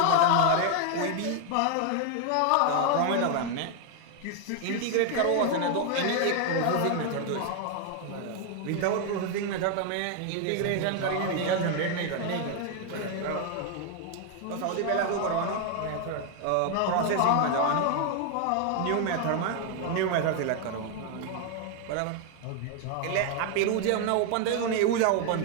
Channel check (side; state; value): both; different; correlation 0.00